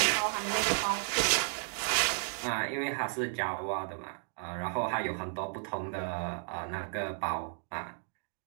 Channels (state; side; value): silent; left; digital silence